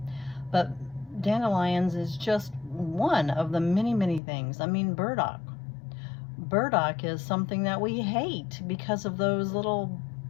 But dandelions is just one of the many things. I mean, burdock. Burdock is something that we hate because of those little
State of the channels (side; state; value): right; drops out; at 4.2 s